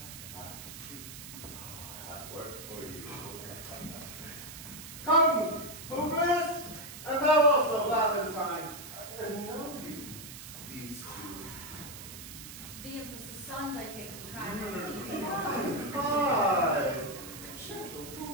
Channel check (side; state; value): right; noise; hiss, 12 dB below the sound